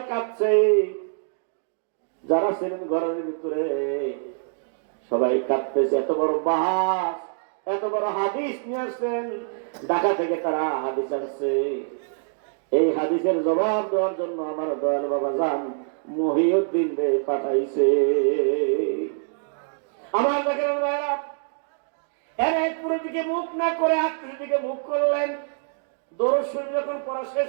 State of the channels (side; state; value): left; silent; digital silence